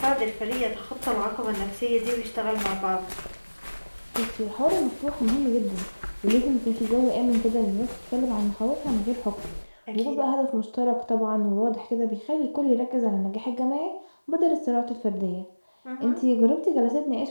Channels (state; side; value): inverted; both; correlation -1.00